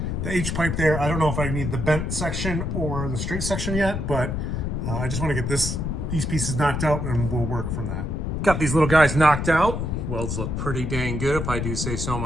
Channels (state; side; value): noise; left; rumble, 2 dB below the sound